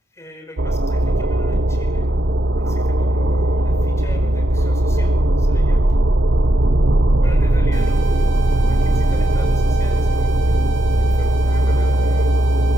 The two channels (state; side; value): normal; both; correlation 0.83